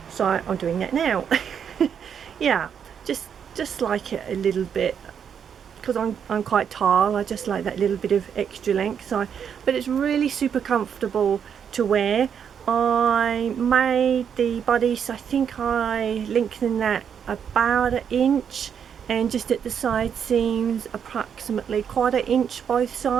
so I'm doing that now. Yeah, just like it a little bit, because I'm quite tall, I just like that little bit of extra length. So, but it's really super comfortable to wear. I made the bodice, I think I lengthened that about 1 inch, and just at the side seams approximately 1/4 inch both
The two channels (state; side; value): quieter; left; 7.8 dB